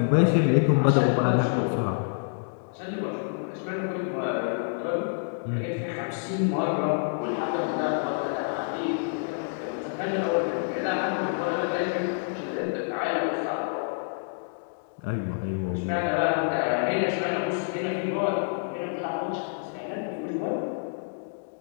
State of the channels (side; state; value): right; silent; digital silence